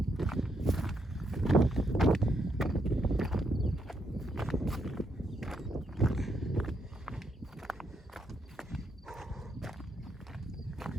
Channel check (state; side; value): normal; both; correlation 0.78